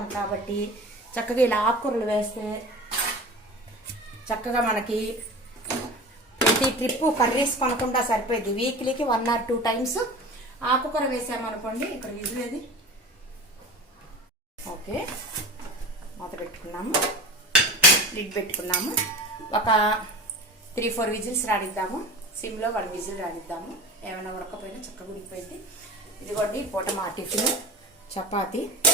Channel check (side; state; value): both; normal; correlation 0.34